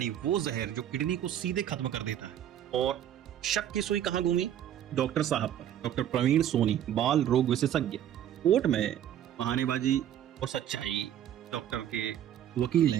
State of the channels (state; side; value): quieter; left; 10.7 dB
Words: वो जहर जो किडनी को सीधे खत्म कर देता है। और शक की सुई कहां घूमी? डॉक्टर साहब पर। डॉक्टर प्रवीण सोनी, बाल रोग विशेषज्ञ। कोर्ट में बहानेबाजी और सच्चाई। डॉक्टर के वकील